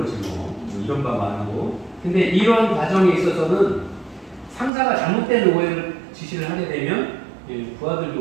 이런 바 많고 근데 이런 과정에 있어서는 상사가 잘못된 오해를 지시를 하게 되면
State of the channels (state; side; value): drops out; left; at 4.7 s